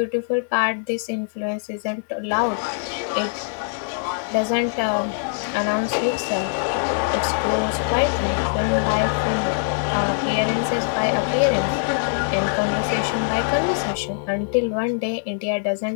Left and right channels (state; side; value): silent; right; 58 dB below the other